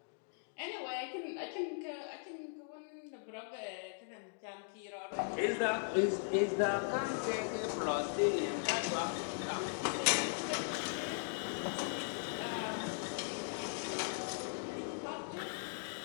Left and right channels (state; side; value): silent; right; digital silence